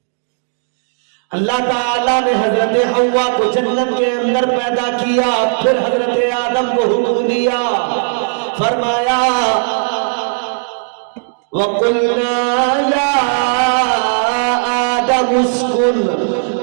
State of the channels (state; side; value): silent; left; digital silence